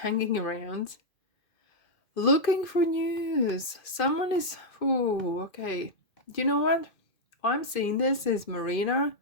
around, looking for news. Someone is. Ooh, okay. You know what? I'm seeing this is Marina,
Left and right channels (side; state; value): right; late; 2.5 ms